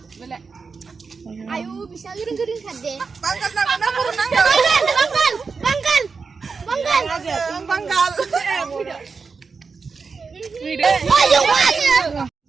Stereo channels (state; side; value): quieter; left; 4.9 dB